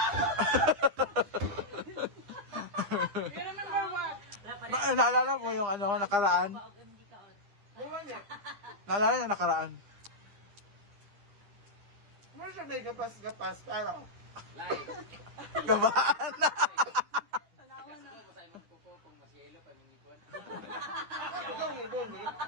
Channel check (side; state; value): left; late; 10 ms